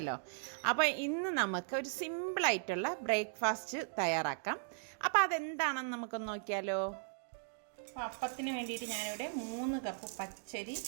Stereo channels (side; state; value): left; silent; digital silence